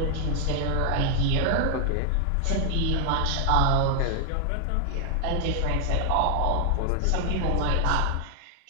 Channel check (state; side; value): different; both; correlation 0.00